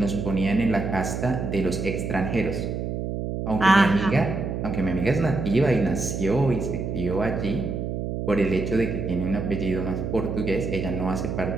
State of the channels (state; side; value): noise; right; hum, 3 dB below the sound